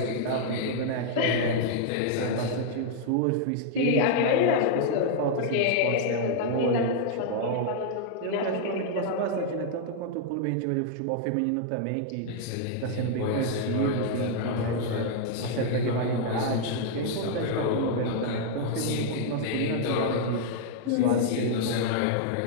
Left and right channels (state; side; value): different; both; correlation -0.01